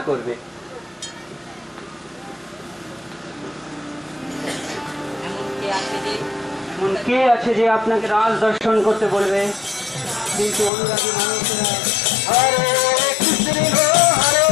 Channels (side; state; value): right; drops out; at 10.7 s